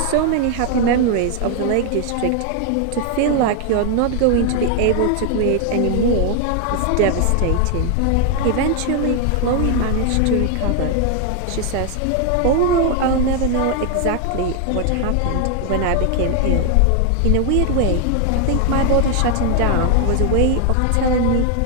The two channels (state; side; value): different; both; correlation 0.01